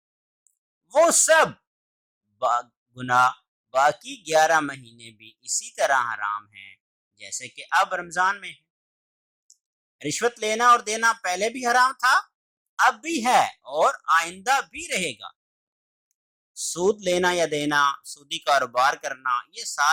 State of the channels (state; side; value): identical; both; correlation 1.00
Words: وہ سب گناہ باقی 11 مہینے بھی اسی طرح حرام ہیں جیسے کہ اب رمضان میں ہے۔ رشوت لینا اور دینا پہلے بھی حرام تھا، اب بھی ہے اور آئندہ بھی رہے گا۔ سود لینا یا دینا، سودی کاروبار کرنا، یہ